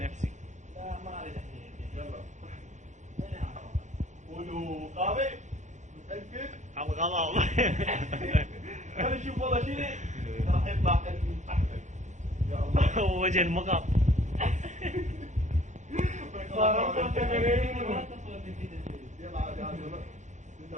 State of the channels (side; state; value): left; late; 0.35 ms